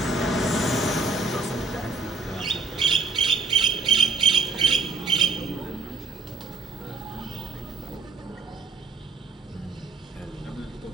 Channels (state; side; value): quieter; left; 3.9 dB